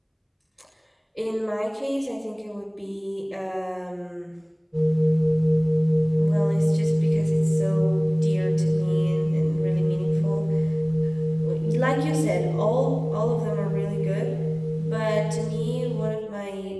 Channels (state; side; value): identical; both; correlation 1.00